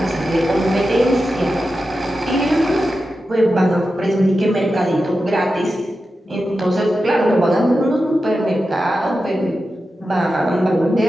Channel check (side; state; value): both; normal; correlation 0.91